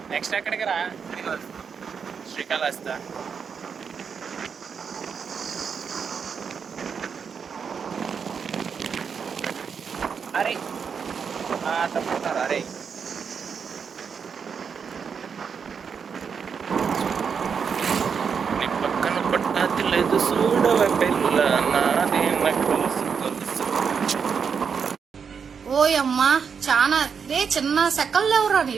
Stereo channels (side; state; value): left; quieter; 6.4 dB